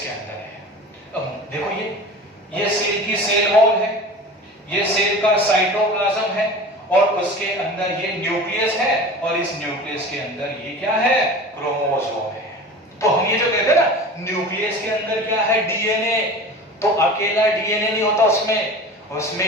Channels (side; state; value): both; normal; correlation 0.36